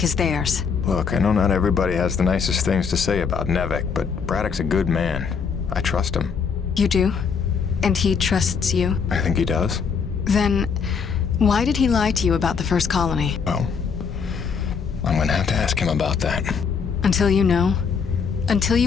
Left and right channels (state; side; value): quieter; right; 6.1 dB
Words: is theirs. Look, I know not everybody has the nicest things to say about Nevik, but Braddock's a good man. I trust him. You do? And he trusts you? I think he does. Then, why did he lie to you about the first colony? Well, I'm gonna have to ask him about that. Until you know? Until